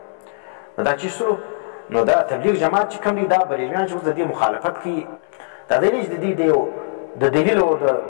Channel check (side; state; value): right; silent; 66 dB below the other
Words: نو دا چې سلو نو دا تبلیغ جماعت چې کوم دی دا بریلویان چې اوس د دې مخالفت کوي دا دی نه چې د دې د دلیل او د